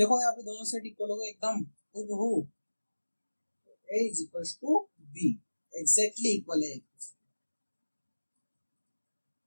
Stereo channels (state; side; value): inverted; both; correlation -1.00